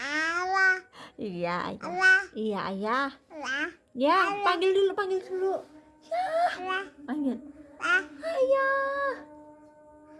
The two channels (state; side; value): identical; both; correlation 1.00